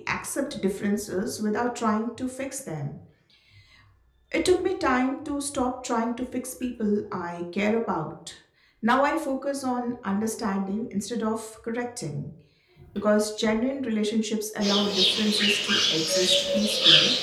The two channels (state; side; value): identical; both; correlation 1.00